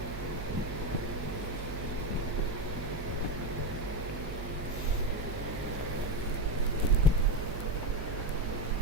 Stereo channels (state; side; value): noise; right; hum, 7 dB below the sound